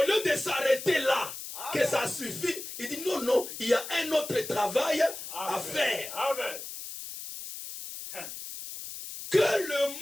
lieu de s'arrêter là, que ça suffit, il dit non, non, il y a un autre travail à faire. Que le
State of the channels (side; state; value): left; noise; hiss, 10 dB below the sound